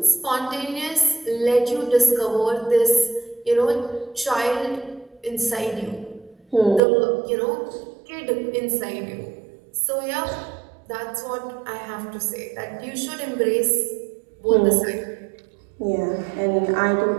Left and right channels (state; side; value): drops out; left; at 6.8 s